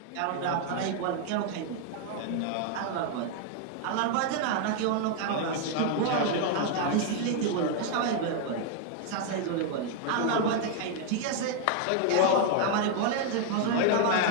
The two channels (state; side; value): different; both; correlation 0.00